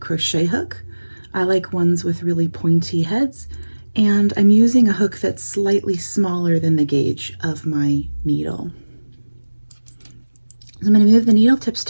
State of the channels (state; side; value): inverted; both; correlation -1.00